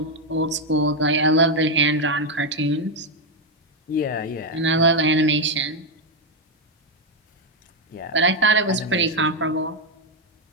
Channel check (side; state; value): both; normal; correlation 0.04